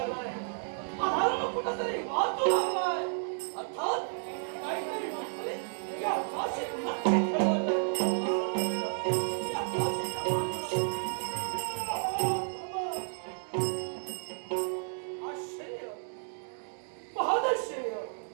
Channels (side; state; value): left; silent; digital silence